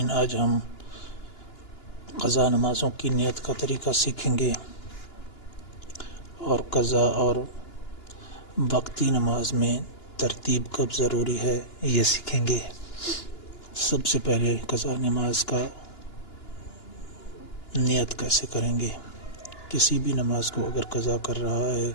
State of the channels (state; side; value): late; right; 2.9 ms